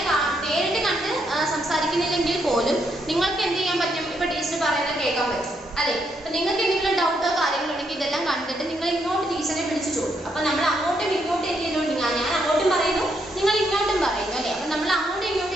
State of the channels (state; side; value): normal; both; correlation 0.76